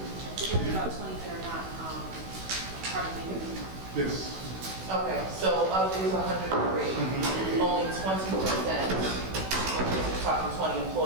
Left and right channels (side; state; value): left; late; 16 ms